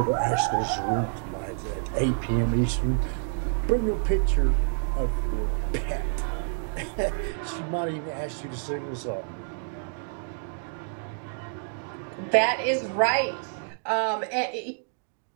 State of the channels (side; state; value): left; silent; 59 dB below the other